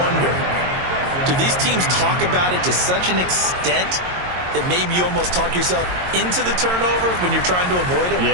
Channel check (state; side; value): late; left; 22 ms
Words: do these teams talk about it to such an extent that maybe you almost talk yourself into the turnover when you're trying to avoid it?